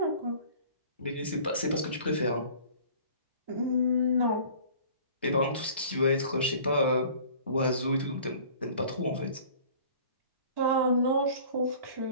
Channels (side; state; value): both; inverted; correlation -0.48